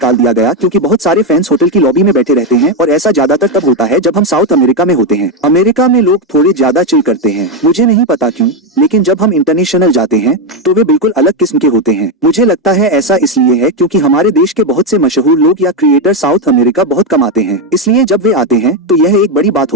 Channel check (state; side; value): normal; both; correlation 0.08